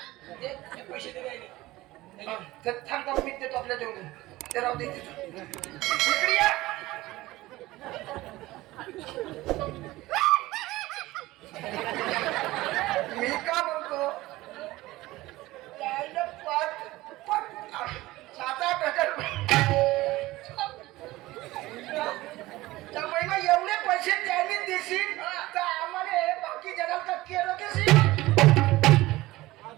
पैसे दे थांबता मी देतो आपल्या जेवढे ते राहू दे इकडे या. मी का म्हणतो त्याला 7-8 त्या महिना एवढे पैसे त्यांनी देशील तर आम्हाला बाकी जगाला का केलं कशी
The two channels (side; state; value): left; quieter; 18.3 dB